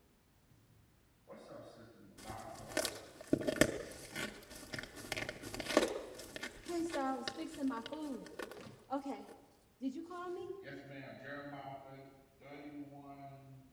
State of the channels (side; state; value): both; identical; correlation 1.00